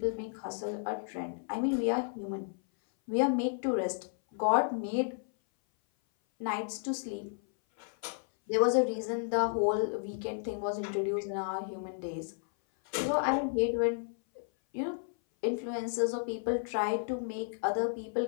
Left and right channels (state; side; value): silent; right; 56 dB below the other